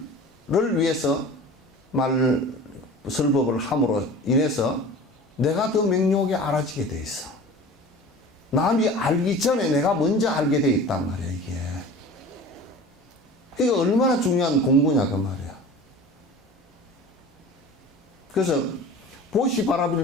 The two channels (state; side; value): normal; both; correlation 0.39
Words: 위해서 설법을 함으로 인해서 내가 더 명료하게 알아지게 돼 있어. 남이 알기 전에 내가 먼저 알게 돼 있단 말이야, 이게. 이게 얼마나 중요한 공부냐, 그 말이야. 그래서